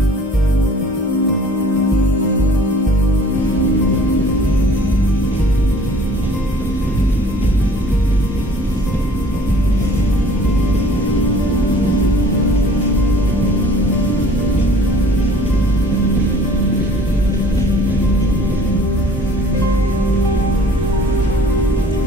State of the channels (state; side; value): normal; both; correlation 0.52